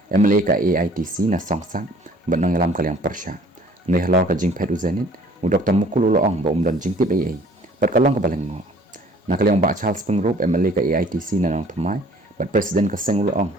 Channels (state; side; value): normal; both; correlation 0.54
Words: MLA ka AITC na songsak benang alam kaliang persya ne halor ka jing pet u zenit u Dr. Mukul uloong ba dan jing tip AA bat kalong ka baleng ngo na kaliang ba Charles Pengrop MLA ka AITC na nang thamai bat presiden ka seng uloong